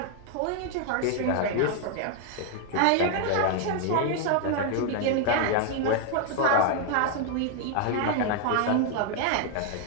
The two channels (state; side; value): different; both; correlation 0.00